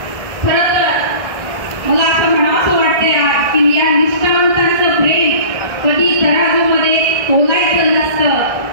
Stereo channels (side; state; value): left; late; 1.6 ms